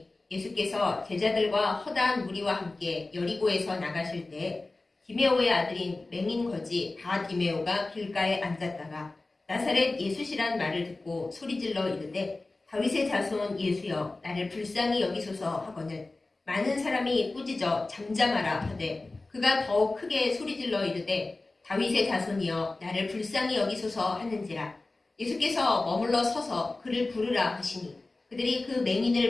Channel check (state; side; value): quieter; right; 3.2 dB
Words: 예수께서 제자들과 허다한 무리와 함께 여리고에서 나가실 때 디메오의 아들인 맹인 거지 바디메오가 길가에 앉았다가 나사렛 예수시란 말을 듣고 소리질러 이르되 다윗의 자손 예수여 나를 불쌍히 여기소서 하거늘 많은 사람이 꾸짖어 잠잠하라 하되 그가 더욱 크게 소리질러 이르되 다윗의 자손이여 나를 불쌍히 여기소서 하는지라. 예수께서 머물러 서서 그를 부르라 하시니 그들이 그